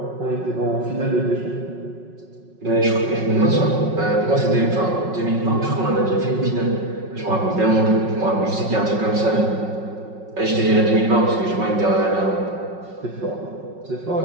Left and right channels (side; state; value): left; late; 5.4 ms